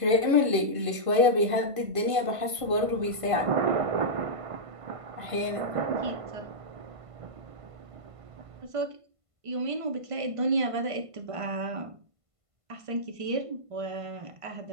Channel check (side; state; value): left; late; 1.5 ms